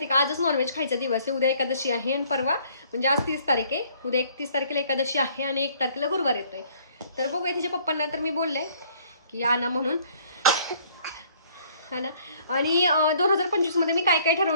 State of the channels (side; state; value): both; inverted; correlation -0.60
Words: का, आजच नॉनव्हेज खायचा दिवस आहे. उद्या एकादशी आहे आणि परवा म्हणजे आज 30 तारीख आहे, उद्या 31 तारखेला एकादशी आहे आणि 1 तारखेला गुरुवार येतोय. तर बघूया, तिच्या पप्पांना तर मी बोलले की आणा म्हणून, हा ना. आणि 2025 मध्ये मी काय काय